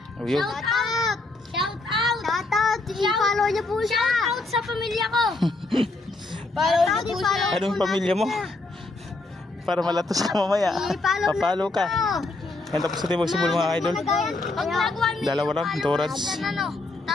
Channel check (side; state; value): right; quieter; 3.1 dB